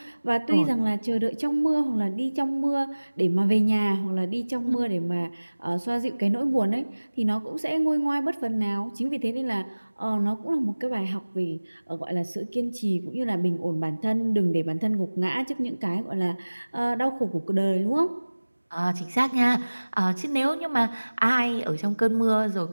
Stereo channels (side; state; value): both; inverted; correlation -1.00